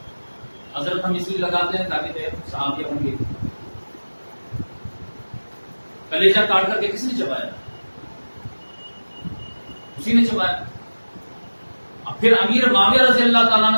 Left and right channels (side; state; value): both; inverted; correlation -1.00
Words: حضرت ہم اس لیے لگاتے ہیں تاکہ صحابہ ہوں گے۔ کلیجہ کاٹ کر کے کس نے چبایا؟ اسی نے چبایا۔ اب پھر امیر معاویہ رضی اللہ تعالیٰ